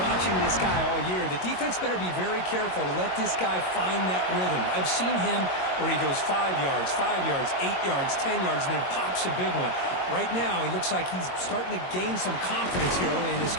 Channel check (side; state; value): right; late; 22 ms